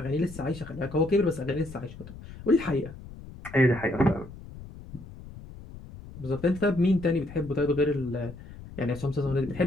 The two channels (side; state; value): left; noise; rumble, 15 dB below the sound